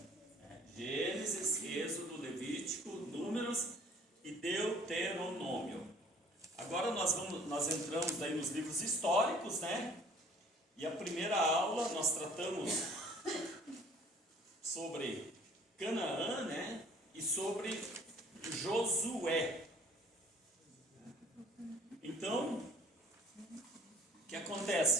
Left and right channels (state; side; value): normal; both; correlation 0.54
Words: Gênesis, Êxodo, Levítico, Números e Deuteronômio. Agora nós entramos daí nos livros históricos, né? E a primeira aula nós tratamos sobre Canaã, né? E sobre Josué. Então, o que